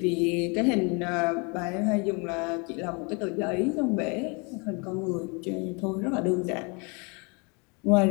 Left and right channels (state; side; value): quieter; right; 32.1 dB